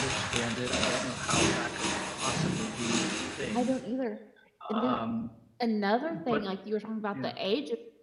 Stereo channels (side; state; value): both; identical; correlation 1.00